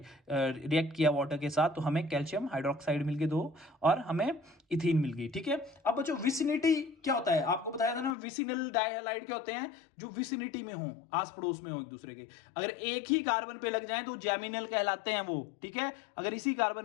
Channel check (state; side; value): drops out; right; at 8.2 s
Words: रिएक्ट किया वाटर के साथ, तो हमें कैल्शियम हाइड्रोक्साइड मिल गए 2 और हमें इथीन मिल गई, ठीक है। अब बच्चों विसिनिटी क्या होता है, आपको बताया था ना, विसिनल डाइहैलाइड क्या होते हैं, जो विसिनिटी में हो, आस पड़ोस में हो एक दूसरे के। अगर एक ही कार्बन पे लग जाए तो जैमिनल कहलाते हैं वो, ठीक है। अगर इसी कार्बन